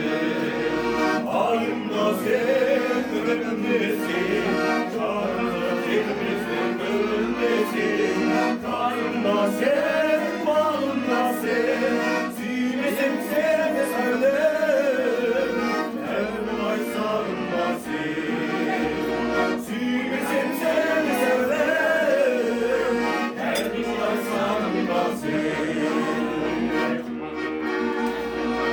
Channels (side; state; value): both; identical; correlation 1.00